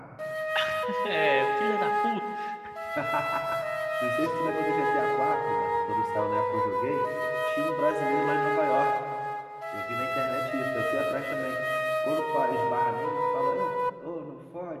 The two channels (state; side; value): identical; both; correlation 1.00